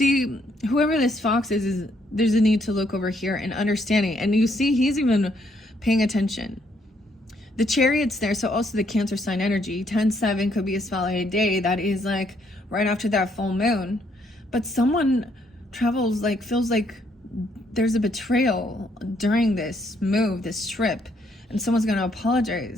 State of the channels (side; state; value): both; normal; correlation 0.71